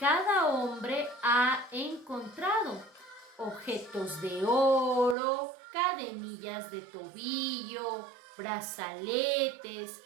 hombre ha encontrado, objetos de oro, cadenillas de tobillo, brazaletes,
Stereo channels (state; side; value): drops out; left; at 5.2 s